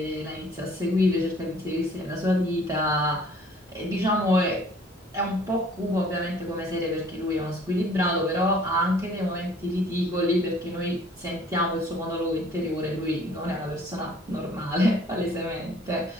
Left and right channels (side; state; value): both; normal; correlation 0.55